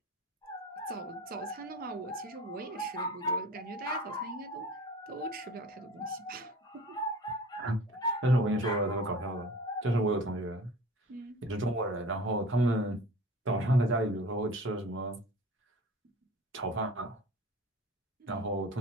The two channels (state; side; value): normal; both; correlation 0.41